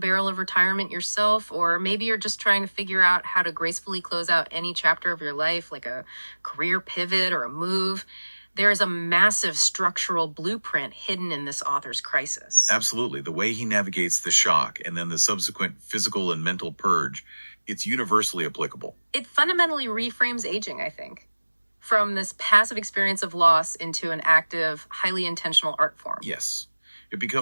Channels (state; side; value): inverted; both; correlation -1.00